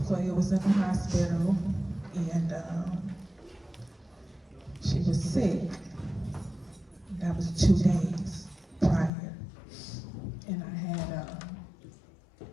was in the hospital and she was sick. That was 2 days prior. And I had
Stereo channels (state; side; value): drops out; right; at 9.1 s